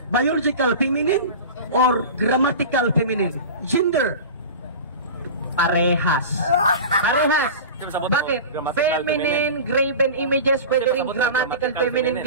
feminine or grammatical feminine? Gender. Parehas. Bakit? Feminine graven images, pwede rin grammatical feminine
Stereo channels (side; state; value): both; inverted; correlation -0.33